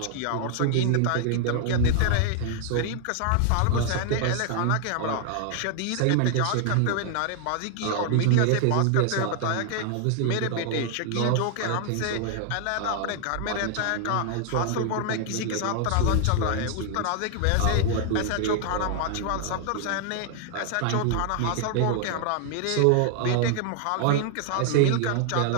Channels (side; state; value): both; different; correlation 0.00